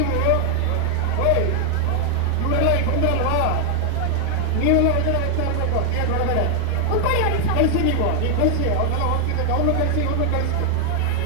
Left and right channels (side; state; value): both; different; correlation 0.00